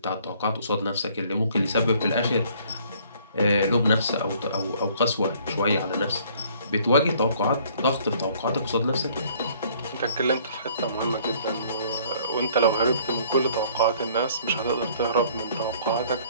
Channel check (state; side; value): inverted; both; correlation -0.58